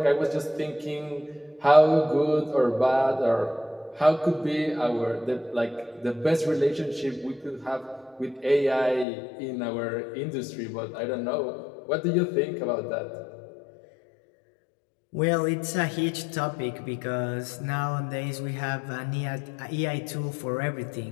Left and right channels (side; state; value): right; drops out; at 9.1 s